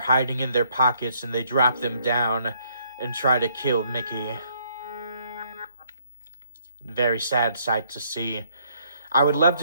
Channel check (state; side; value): inverted; both; correlation -0.68